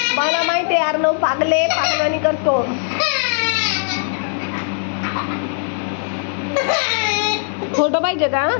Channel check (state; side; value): silent; right; digital silence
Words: मला माहिती आहे अर्णव पागले, पागलवाणी करतो. फोटो पाहिजे का?